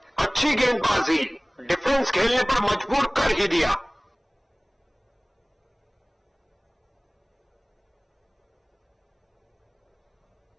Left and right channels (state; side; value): identical; both; correlation 1.00